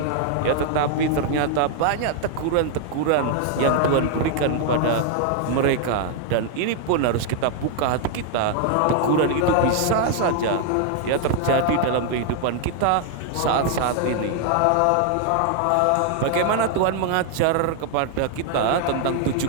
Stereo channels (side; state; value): both; different; correlation 0.00